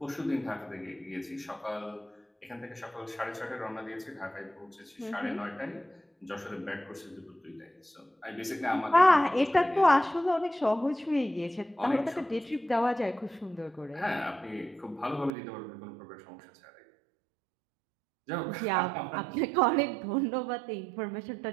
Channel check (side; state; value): left; drops out; at 15.3 s